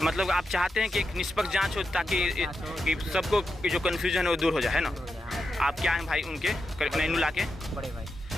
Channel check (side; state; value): both; normal; correlation 0.88